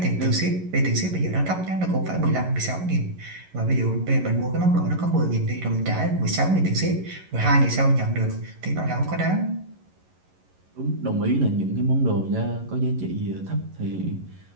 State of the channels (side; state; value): left; late; 11 ms